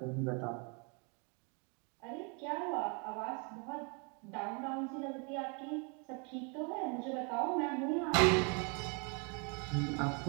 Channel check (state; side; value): quieter; left; 34.8 dB